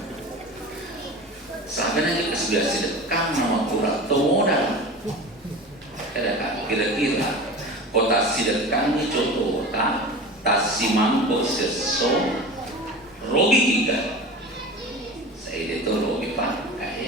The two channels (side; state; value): both; normal; correlation 0.33